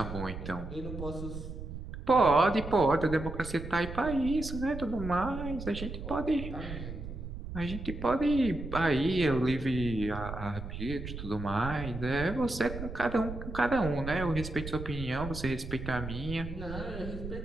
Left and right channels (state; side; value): noise; right; rumble, 8 dB below the sound